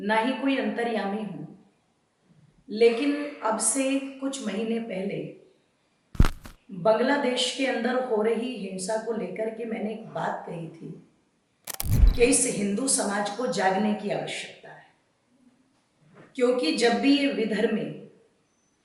ही कोई अंतर्यामी हूं, लेकिन अब से कुछ महीने पहले बांग्लादेश के अंदर हो रही हिंसा को लेकर के मैंने एक बात कही थी कि इस हिंदू समाज को जागने की आवश्यकता है, क्योंकि जब भी ये विधर्मी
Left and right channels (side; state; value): both; identical; correlation 1.00